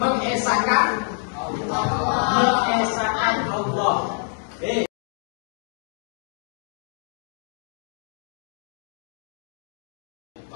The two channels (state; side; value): silent; right; digital silence